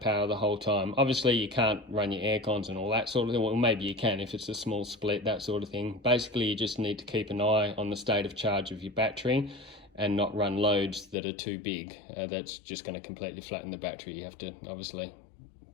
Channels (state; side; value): drops out; right; at 11.2 s